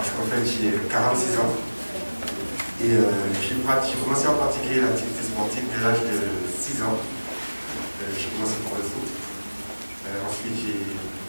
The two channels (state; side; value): inverted; both; correlation -1.00